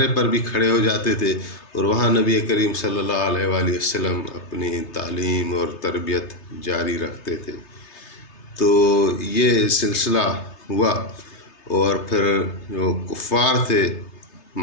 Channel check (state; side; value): late; right; 3.3 ms